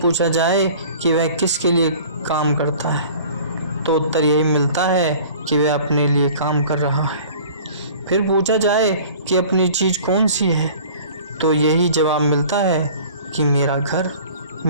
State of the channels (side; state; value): both; inverted; correlation -0.46